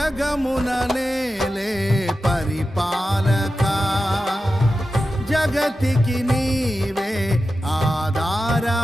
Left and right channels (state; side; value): normal; both; correlation 0.92